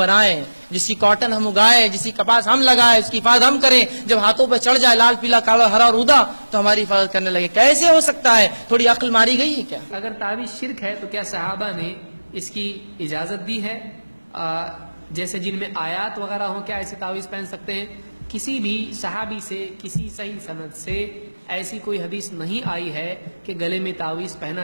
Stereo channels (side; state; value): both; inverted; correlation -1.00